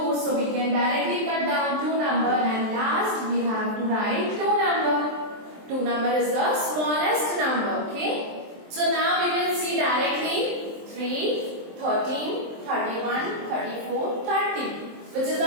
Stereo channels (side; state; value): left; late; 23 ms